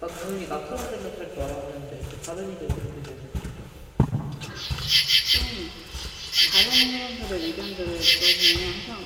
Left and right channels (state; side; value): identical; both; correlation 1.00